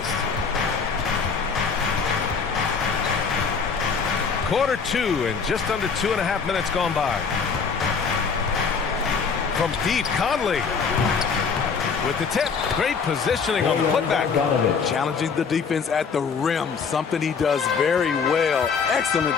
Quarter 2 and just under 2.5 minutes gone by. From deep, Conley with the tip. Great positioning on the putback. Challenging the defense at the rim, something he does very well. Excellent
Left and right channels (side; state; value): right; quieter; 5.7 dB